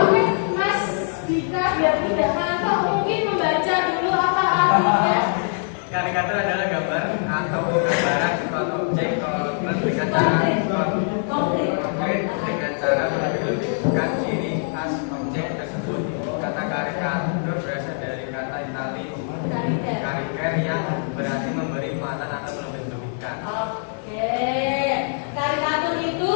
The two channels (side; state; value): right; silent; 63 dB below the other